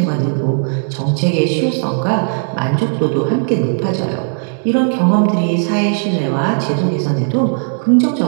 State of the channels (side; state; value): left; silent; 64 dB below the other